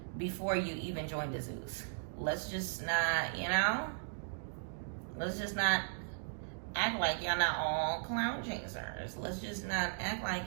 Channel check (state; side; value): silent; left; digital silence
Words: before you even joined the Zeus. Let's just not, you know, let's just not act like y'all not all clown chasers. Let's just not act